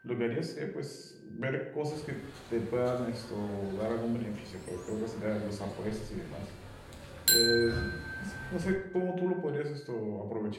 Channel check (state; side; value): identical; both; correlation 1.00